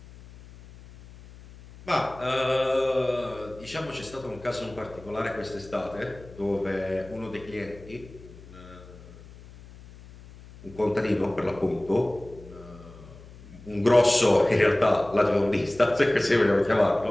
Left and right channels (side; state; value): left; noise; hum, 19 dB below the sound